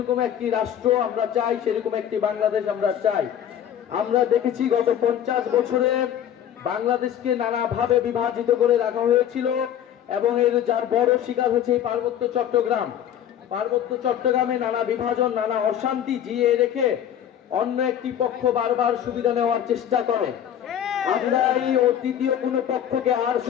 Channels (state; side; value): quieter; right; 10.1 dB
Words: একটি রাষ্ট্র আমরা চাই, সেরকম একটি বাংলাদেশ আমরা চাই। আমরা দেখেছি গত 50 বছরে বাংলাদেশকে নানাভাবে বিভাজিত করে রাখা হয়েছিল এবং এর যার বড় শিকার হচ্ছে এই পার্বত্য চট্টগ্রাম। পার্বত্য চট্টগ্রামে নানা বিভাজন, নানা অশান্তি জিয়ে রেখে অন্য একটি পক্ষ বারবার সুবিধা নেওয়ার চেষ্টা করে। আমরা এই তৃতীয় কোনো পক্ষকে আর